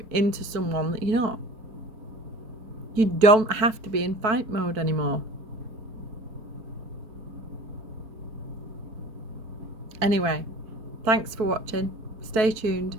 into someone that you're not. You don't have to be in fight mode anymore. Anyway, thanks for watching. Stay tuned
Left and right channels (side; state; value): left; late; 4.5 ms